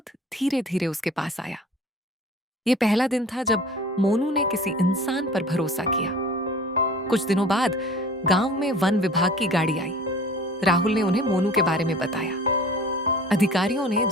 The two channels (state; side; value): normal; both; correlation 0.45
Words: धीरे धीरे उसके पास आया। यह पहला दिन था जब मोनू ने किसी इंसान पर भरोसा किया। कुछ दिनों बाद गांव में वन विभाग की गाड़ी आई। राहुल ने उन्हें मोनू के बारे में बताया। अधिकारियों ने